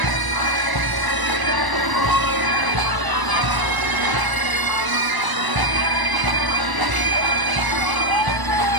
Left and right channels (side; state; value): left; late; 1.0 ms